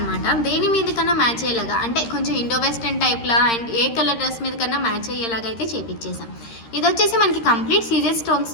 దేని మీద కన్నా మ్యాచ్ అయ్యేలాగా, అంటే కొంచెం ఇండో వెస్టర్న్ టైప్లా అండ్ ఏ కలర్ డ్రెస్ మీద కన్నా మ్యాచ్ అయ్యేలాగా అయితే చేపించేసాం. ఇది వచ్చేసి మనకి కంప్లీట్ సీజెడ్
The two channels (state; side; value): late; right; 13 ms